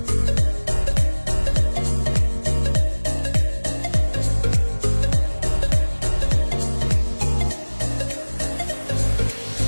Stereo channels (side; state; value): both; inverted; correlation -1.00